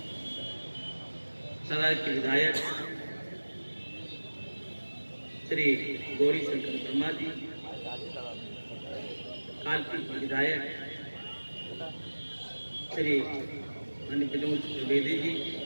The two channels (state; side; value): inverted; both; correlation -1.00